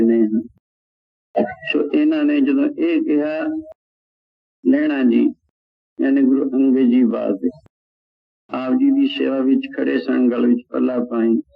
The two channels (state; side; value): identical; both; correlation 1.00